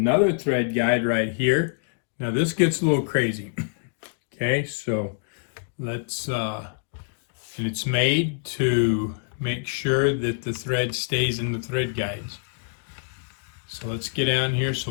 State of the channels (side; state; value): right; silent; digital silence